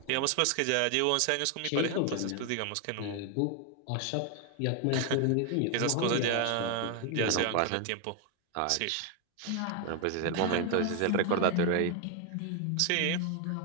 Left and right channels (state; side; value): different; both; correlation 0.01